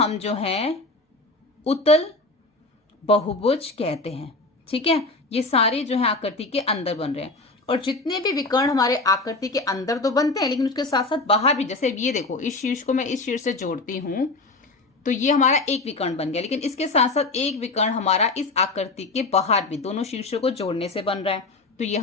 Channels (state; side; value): quieter; right; 3.3 dB